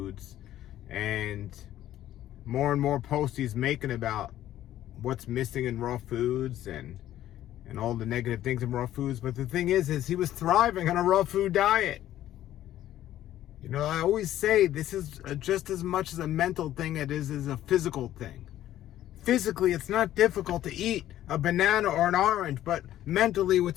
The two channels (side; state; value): right; quieter; 12.9 dB